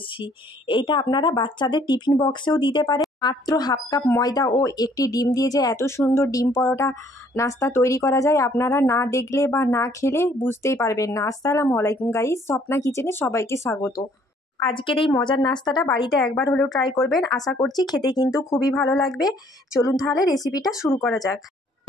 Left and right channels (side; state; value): both; normal; correlation 0.62